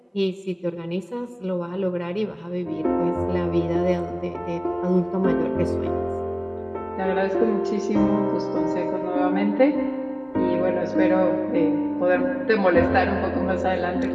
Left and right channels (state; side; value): identical; both; correlation 1.00